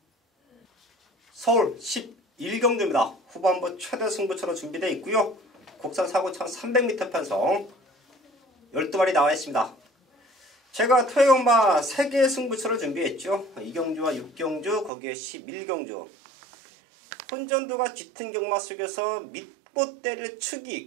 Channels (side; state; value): left; drops out; at 14.9 s